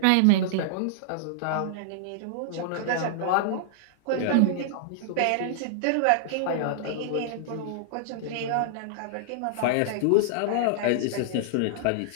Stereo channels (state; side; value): different; both; correlation -0.01